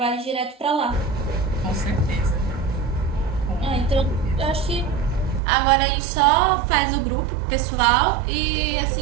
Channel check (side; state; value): left; drops out; at 5.4 s